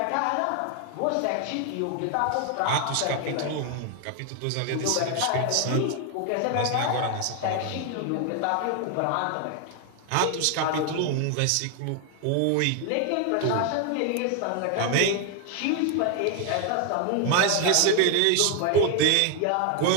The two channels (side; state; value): both; different; correlation 0.01